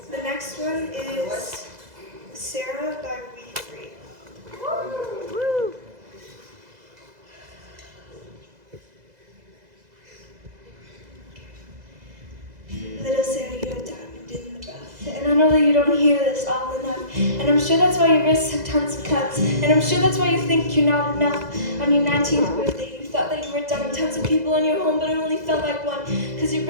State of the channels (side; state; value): left; late; 2.0 ms